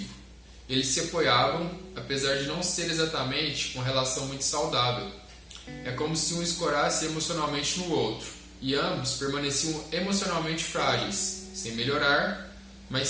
Eles se apoiavam, apesar de não ser exatamente uma relação muito saudável. É como se um escorasse emocionalmente no outro, e ambos permaneciam emocionalmente frágeis, sem melhorar, mas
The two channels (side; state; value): both; identical; correlation 1.00